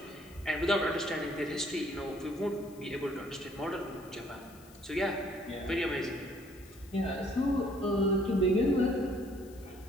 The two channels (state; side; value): noise; left; hiss, 24 dB below the sound